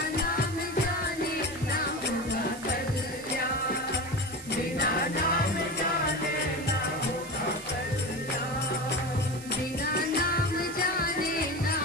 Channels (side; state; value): right; noise; hiss, 15 dB below the sound